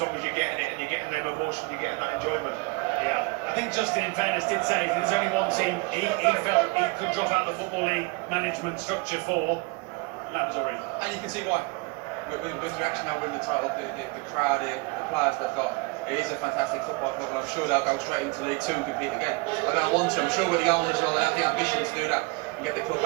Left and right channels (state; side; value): quieter; left; 27.4 dB